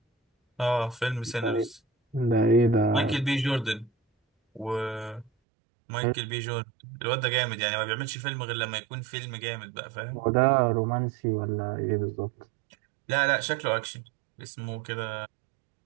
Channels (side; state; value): left; drops out; at 5.3 s